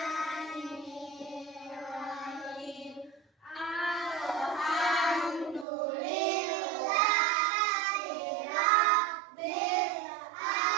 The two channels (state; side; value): drops out; left; at 5.7 s